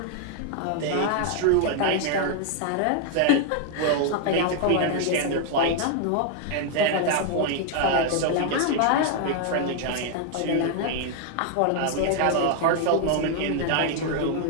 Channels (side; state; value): both; different; correlation 0.00